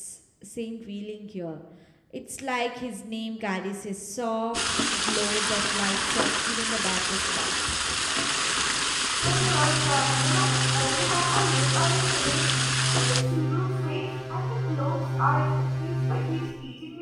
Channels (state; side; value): identical; both; correlation 1.00